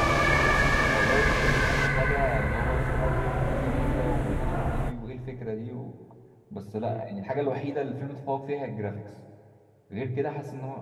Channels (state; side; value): identical; both; correlation 1.00